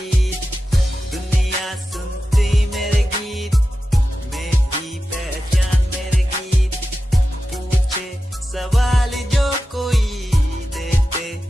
दुनिया सुनती मेरे गीत, मेरी पहचान मेरे गीत, पूछे सवाल जो कोई देते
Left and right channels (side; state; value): both; normal; correlation 0.92